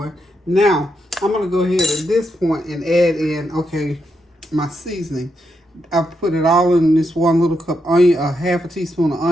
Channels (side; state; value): both; normal; correlation 0.82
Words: Now, I'm going to go ahead at this point and add in, okay, my seasoning. I've put it all in this one little cup. Onion, half a teaspoon of